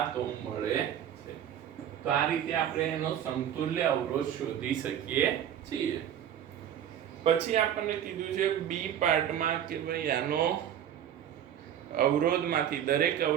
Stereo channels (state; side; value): quieter; left; 10.0 dB